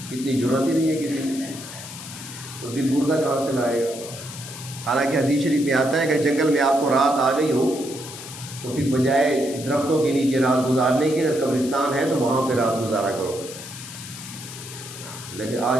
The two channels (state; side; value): noise; left; hiss, 12 dB below the sound